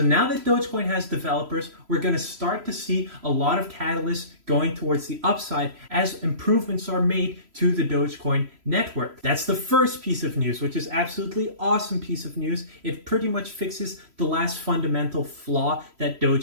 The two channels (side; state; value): left; late; 3.0 ms